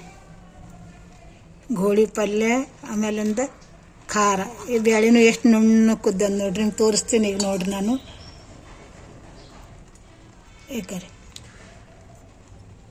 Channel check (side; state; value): both; identical; correlation 1.00